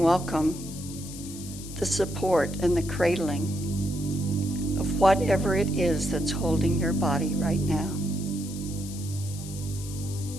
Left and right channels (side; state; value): left; noise; hiss, 13 dB below the sound